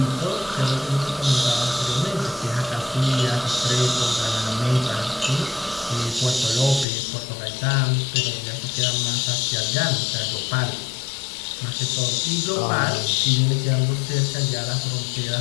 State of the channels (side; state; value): right; drops out; at 6.9 s